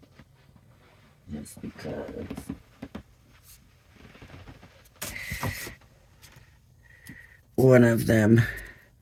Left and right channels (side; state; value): both; identical; correlation 1.00